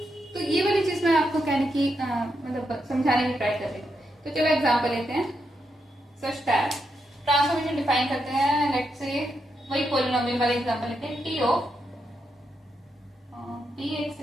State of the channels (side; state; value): both; normal; correlation 0.83